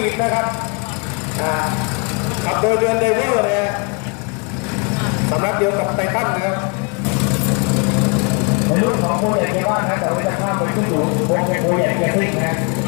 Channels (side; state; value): right; quieter; 34.2 dB